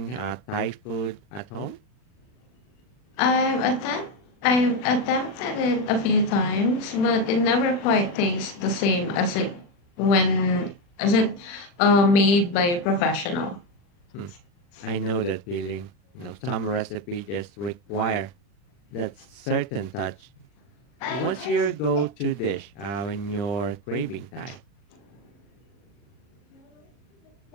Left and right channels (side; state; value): right; late; 40 ms